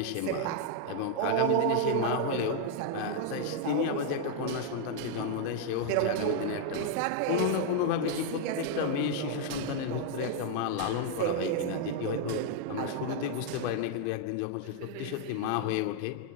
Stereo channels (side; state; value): both; different; correlation 0.00